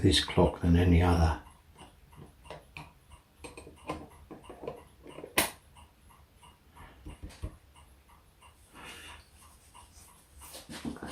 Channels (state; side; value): identical; both; correlation 1.00